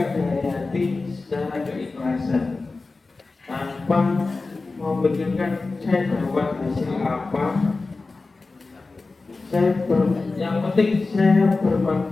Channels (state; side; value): quieter; right; 3.7 dB